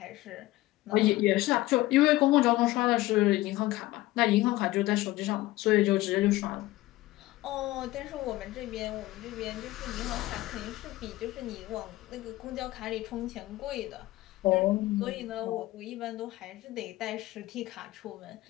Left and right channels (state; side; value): quieter; right; 17.7 dB